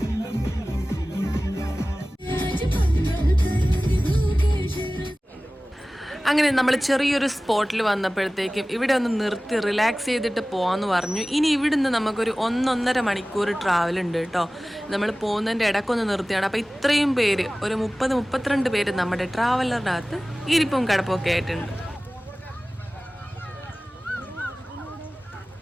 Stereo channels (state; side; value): normal; both; correlation 0.98